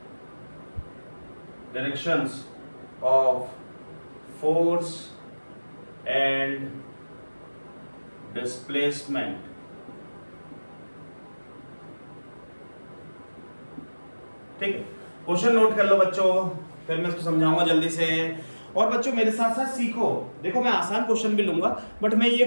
directions of force and displacement। ठीक है, question note कर लो बच्चों, फिर मैं इसको समझाऊंगा जल्दी से। और बच्चों मेरे साथ साथ सीखो, देखो मैं आसान क्वेश्चन भी लूंगा, बट मैं ये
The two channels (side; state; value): both; inverted; correlation -1.00